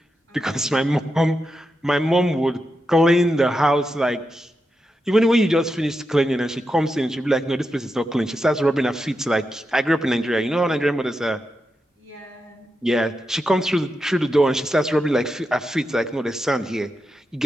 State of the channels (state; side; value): normal; both; correlation 0.87